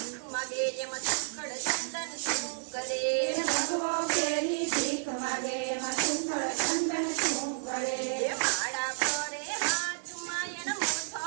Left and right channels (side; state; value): left; silent; digital silence